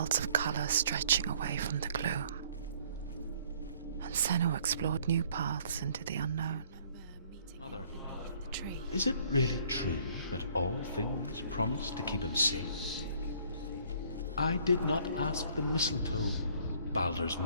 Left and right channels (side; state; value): both; inverted; correlation -0.60